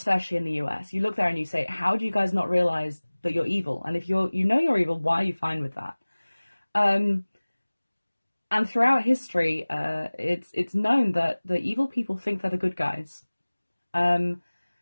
in the US. You look there and you say, how do you guys not realize that you're evil? And if you know you're evil, why are you fine with that? And throughout history, it's known that the evil people think they're the good guys.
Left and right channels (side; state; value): both; inverted; correlation -1.00